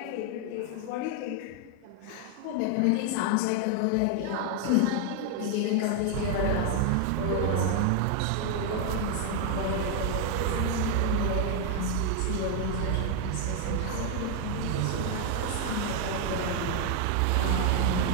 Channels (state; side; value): different; both; correlation 0.00